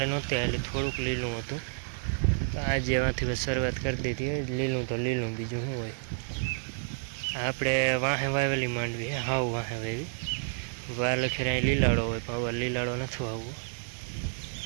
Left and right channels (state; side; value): silent; left; 58 dB below the other